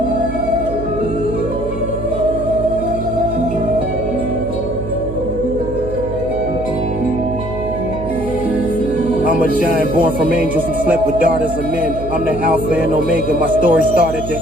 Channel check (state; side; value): noise; right; hum, 9 dB below the sound